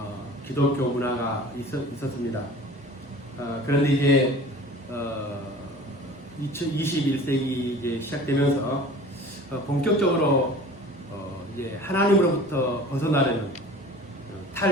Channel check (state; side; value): normal; both; correlation 0.43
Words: 기독교 문화가 있었습니다. 그런데 이제 21세기 이제 시작되면서 본격적으로 이제 하나님으로부터 벗어나려는